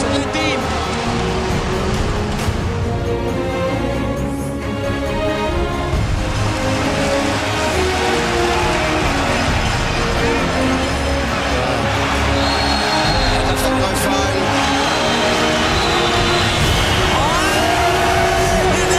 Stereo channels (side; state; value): both; identical; correlation 1.00